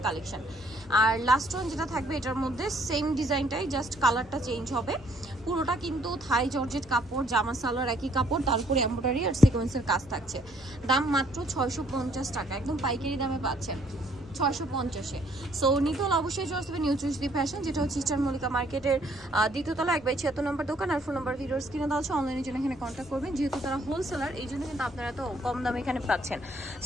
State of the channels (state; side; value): normal; both; correlation 0.64